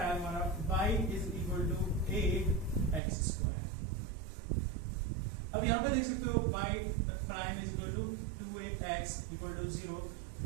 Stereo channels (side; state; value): left; drops out; at 3.0 s